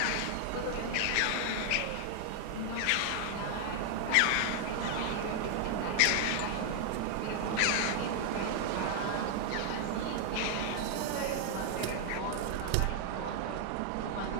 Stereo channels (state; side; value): different; both; correlation 0.00